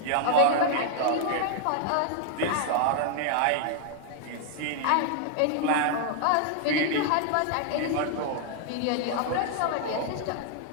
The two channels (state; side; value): different; both; correlation -0.01